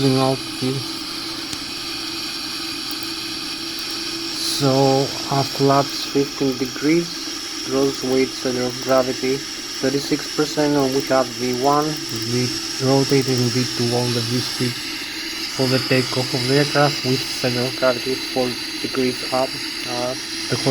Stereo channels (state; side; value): noise; left; rumble, 23 dB below the sound